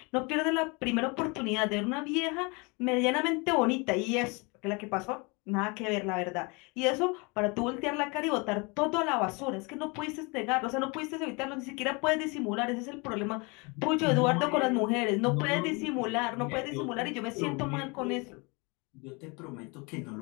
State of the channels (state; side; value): quieter; right; 29.2 dB